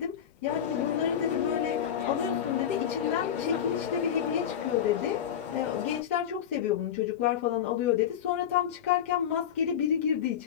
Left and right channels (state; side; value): quieter; right; 9.3 dB